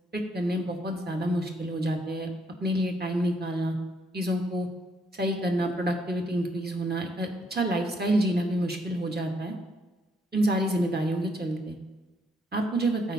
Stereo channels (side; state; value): both; normal; correlation 0.72